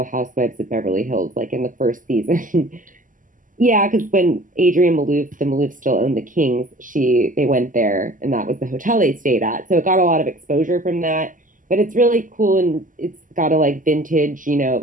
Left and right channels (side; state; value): left; late; 0.38 ms